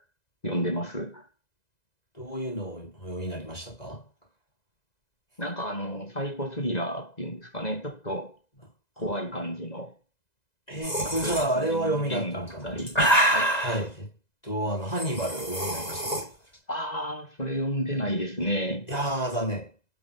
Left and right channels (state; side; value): late; right; 2.0 ms